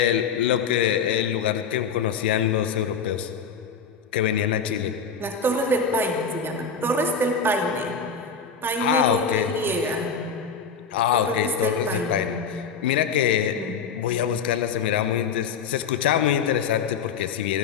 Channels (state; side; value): quieter; right; 5.8 dB